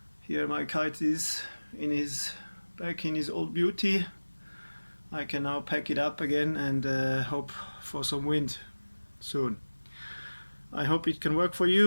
here my kite is back in his old beauty. I can now pack it up again and hope for some wind soon. I hope it can work for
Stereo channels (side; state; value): both; inverted; correlation -1.00